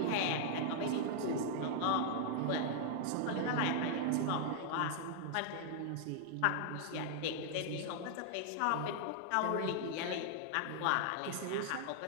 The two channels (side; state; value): both; different; correlation 0.00